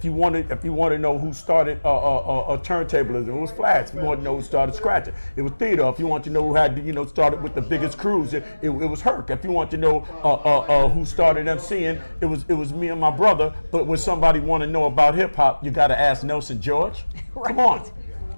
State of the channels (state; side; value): inverted; both; correlation -1.00